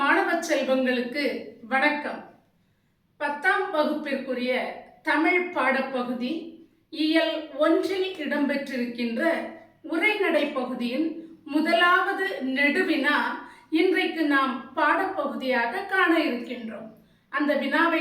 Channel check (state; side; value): identical; both; correlation 1.00